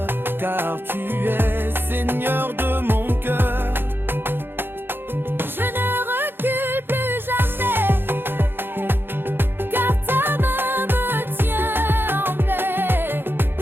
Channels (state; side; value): late; left; 0.10 ms